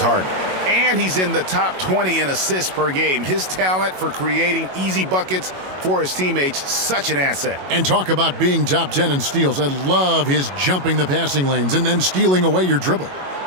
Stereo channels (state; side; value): late; left; 21 ms